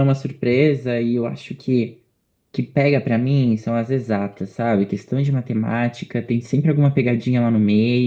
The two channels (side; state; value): both; identical; correlation 1.00